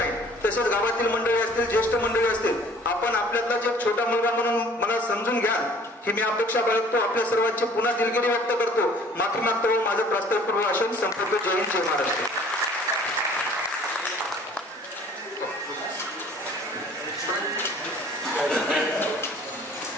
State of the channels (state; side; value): normal; both; correlation 0.52